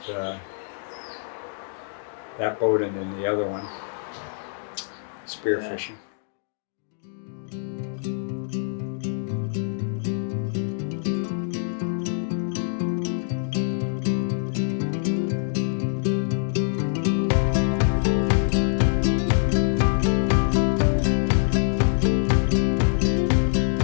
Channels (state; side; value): silent; right; digital silence